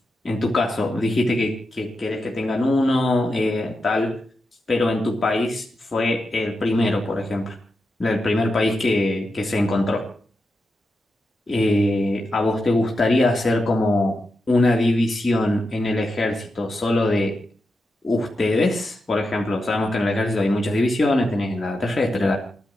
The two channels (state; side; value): normal; both; correlation 0.88